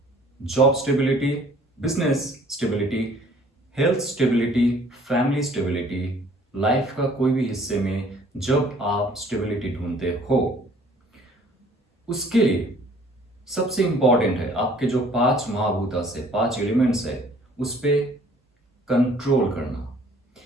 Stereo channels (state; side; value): normal; both; correlation 0.56